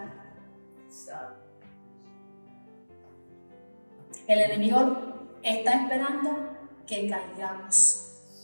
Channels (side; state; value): both; inverted; correlation -1.00